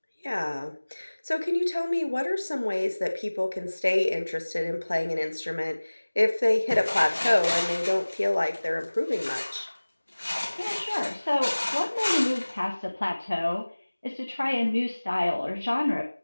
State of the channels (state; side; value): inverted; both; correlation -1.00